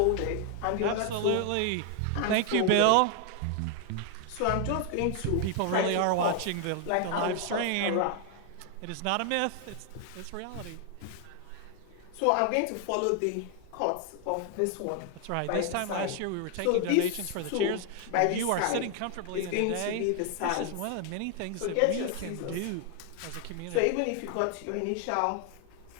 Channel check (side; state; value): both; different; correlation 0.00